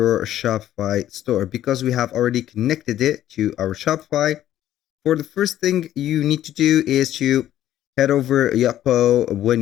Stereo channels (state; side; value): quieter; right; 12.3 dB